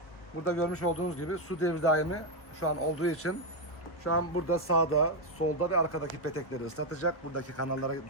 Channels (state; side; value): late; right; 1.3 ms